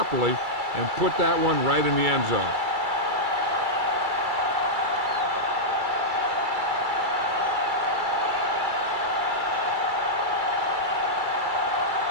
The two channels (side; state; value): left; late; 2.3 ms